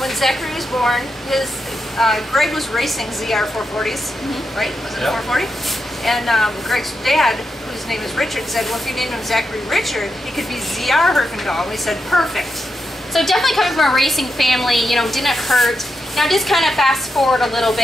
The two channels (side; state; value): both; normal; correlation 0.86